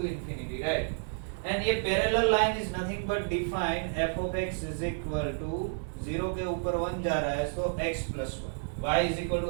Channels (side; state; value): left; silent; digital silence